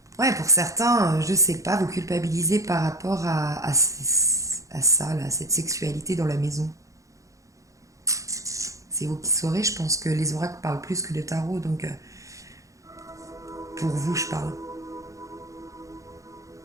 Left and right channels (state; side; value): late; left; 0.16 ms